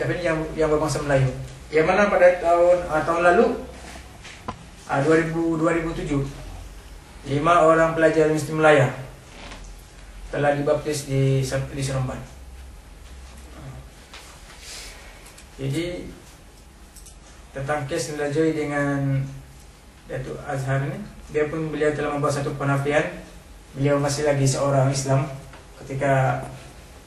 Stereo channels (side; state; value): both; identical; correlation 1.00